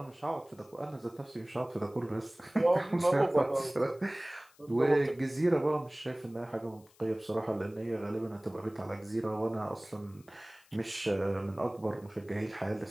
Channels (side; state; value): left; noise; hiss, 29 dB below the sound